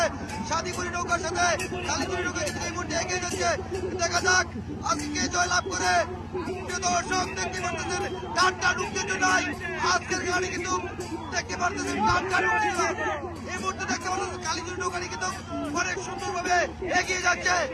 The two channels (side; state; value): both; identical; correlation 1.00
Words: শাদীপুরি নৌকার সাথে কালীজুরি নৌকা কিন্তু এই মুহূর্তে এগিয়ে যাচ্ছে। দেখা যাক আজকে জয়লাভ করে দর্শক দেখতে পারতেছেন টানটা ঢুকতে নাই। আজকের গাড়ি কিন্তু দেখতে পারতেছেন টানটা ঢুকতে এই মুহূর্তে দেখতে পাচ্ছেন কালীজুরি নৌকাটি কিন্তু অনেক সুন্দরভাবে এগিয়ে যাচ্ছে।